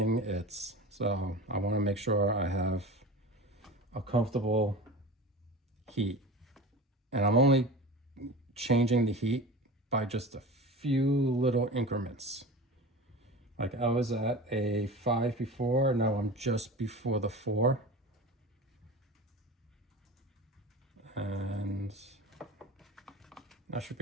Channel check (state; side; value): normal; both; correlation 0.33